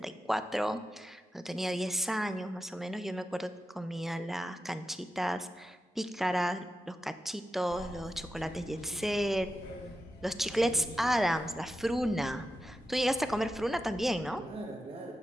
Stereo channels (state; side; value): normal; both; correlation 0.90